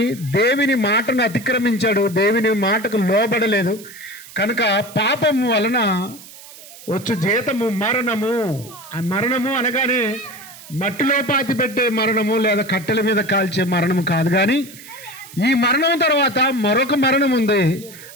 దేవుని మాటను అతిక్రమించాడు, దేవుని మాటకు లోబడలేదు. కనుక పాపము వలన వచ్చు జీతము మరణము. ఆ మరణము అనగానే మట్టిలో పాతి పెట్టే మరణము లేదా కట్టెల మీద కాల్చే మరణము కాదు, కానీ ఈ మరణం తర్వాత మరొక మరణం ఉంది.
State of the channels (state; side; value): noise; right; hiss, 18 dB below the sound